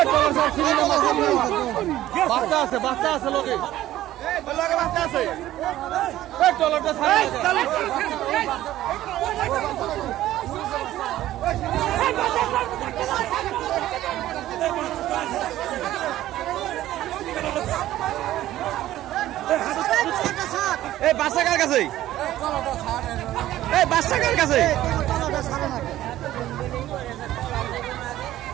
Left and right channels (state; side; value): quieter; left; 14.1 dB